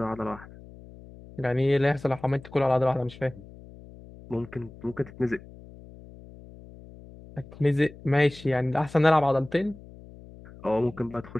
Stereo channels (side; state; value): left; noise; hum, 19 dB below the sound